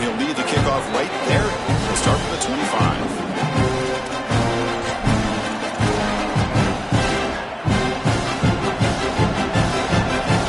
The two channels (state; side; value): identical; both; correlation 1.00